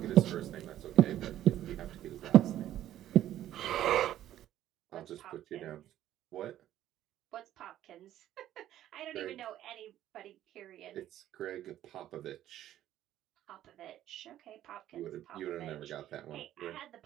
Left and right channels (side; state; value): left; quieter; 12.5 dB